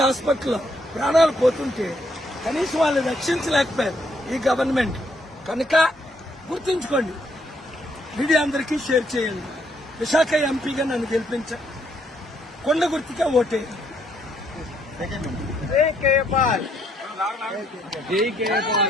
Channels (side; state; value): both; normal; correlation 0.72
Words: హాస్పిటల్లో ప్రాణాలు పోతుంటే కనీసం వాళ్ళు రక్షించలేకపోయారు ఈ గవర్నమెంట్. కనుక గుర్తుంచుకోండి, మీడియా అందరికీ షేర్ చేయండి. విశాఖ ఎంపీగా నన్ను గెలిపించండి, కొండ గుర్తుగా ఓటేయండి. జై కేపాల్, జై